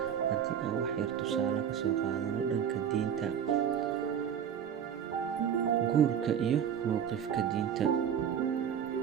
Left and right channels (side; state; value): left; quieter; 8.5 dB